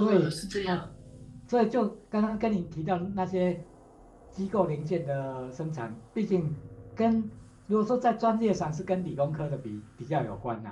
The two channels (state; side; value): identical; both; correlation 1.00